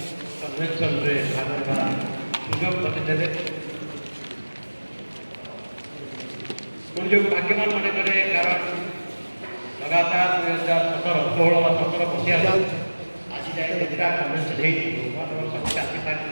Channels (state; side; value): inverted; both; correlation -1.00